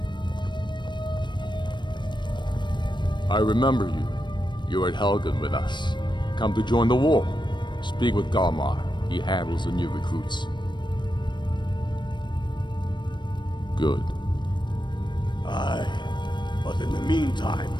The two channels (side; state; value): right; late; 0.22 ms